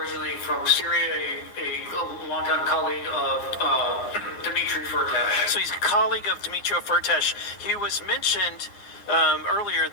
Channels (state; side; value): late; right; 9.7 ms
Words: from Syria, a longtime colleague of Dmitry Firtash. So he's a colleague of Dmitry Firtash. He was mentioned earlier